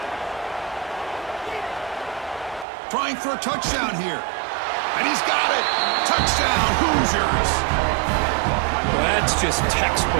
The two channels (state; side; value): drops out; left; at 2.7 s